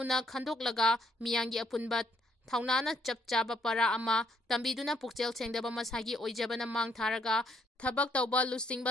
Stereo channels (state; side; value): normal; both; correlation 0.70